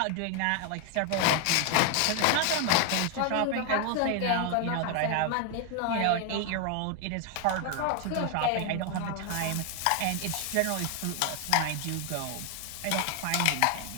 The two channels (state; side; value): different; both; correlation 0.01